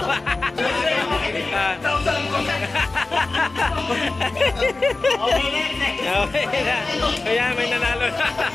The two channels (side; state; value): right; quieter; 3.4 dB